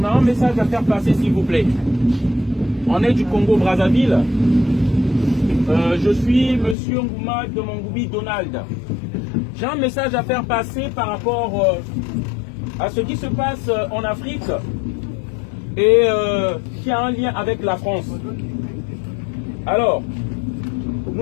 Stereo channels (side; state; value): right; drops out; at 6.8 s